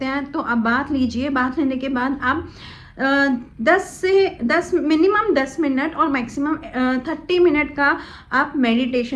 हैं तो आप बाथ लीजिए। बाथ लेने के बाद आप 10 मिनिमम 10 मिनट और मैक्सिमम 30 मिनट का आप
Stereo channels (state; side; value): identical; both; correlation 1.00